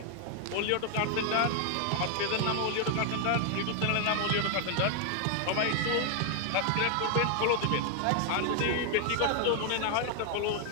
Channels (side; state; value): both; different; correlation 0.00